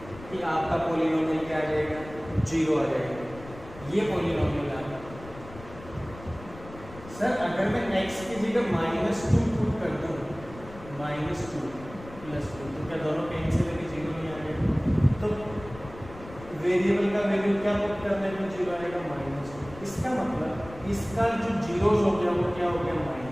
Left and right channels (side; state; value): left; noise; rumble, 16 dB below the sound